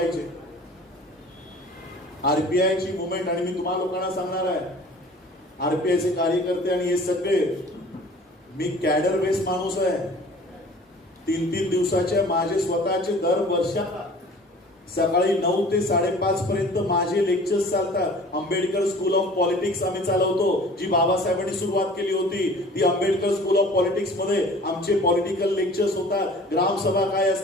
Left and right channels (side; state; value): both; normal; correlation 0.46